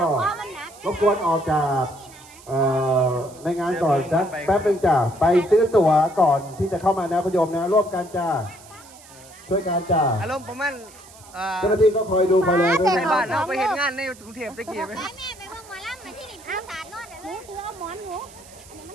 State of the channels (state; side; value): noise; right; hiss, 22 dB below the sound